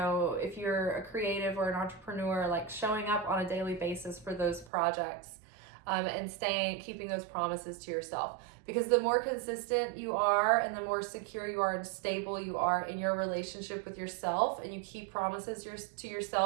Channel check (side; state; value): left; drops out; at 4.7 s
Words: if you're a creative or an entrepreneur, like showing up on a daily basis for those projects. And keeping those promises to yourself, because the more consistent you are and the more secure you are and stable you are in your relationship with yourself, and you keep promises to